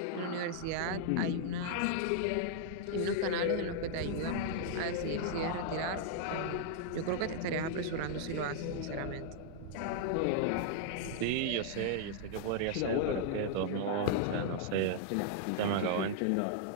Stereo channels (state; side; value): different; both; correlation -0.01